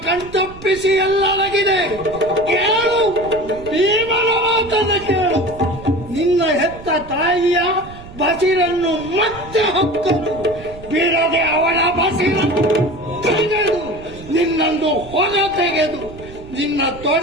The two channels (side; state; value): right; noise; rumble, 17 dB below the sound